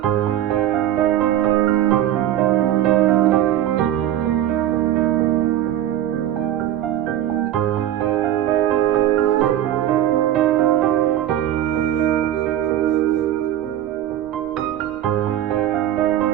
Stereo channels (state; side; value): quieter; left; 12.0 dB